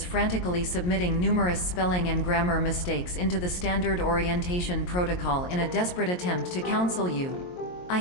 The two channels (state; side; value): late; right; 22 ms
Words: frantically submitting numerous spelling and grammar mistakes into the standard orientation protocol in a desperate attempt to counsel you. I